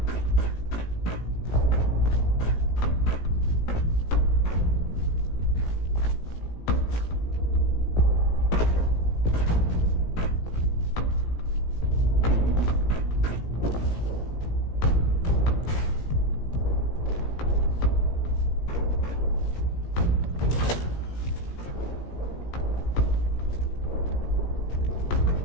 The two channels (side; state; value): right; late; 17 ms